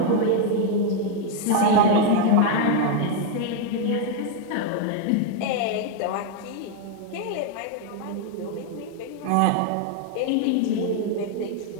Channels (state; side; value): different; both; correlation 0.00